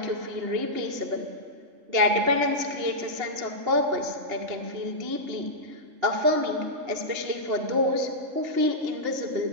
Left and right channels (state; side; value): late; left; 2.8 ms